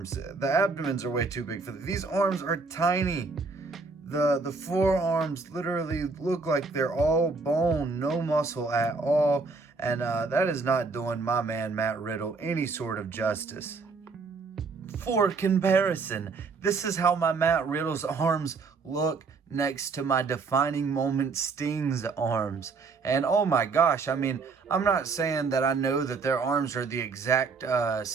The abdomens are way too big for these arms are tiny. The forearms literally look like they're all bone, no muscle at all. And that is not doing my man Matt Riddle any sort of justice. For comparison, this is how my Matt Riddle's arms look next to my defining moment Sting's arms. And oh my gosh, I mean, I'm not saying that I know that their arms are the exact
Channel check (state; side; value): quieter; left; 4.4 dB